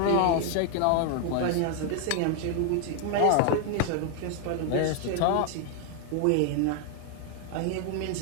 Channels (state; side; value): different; both; correlation 0.00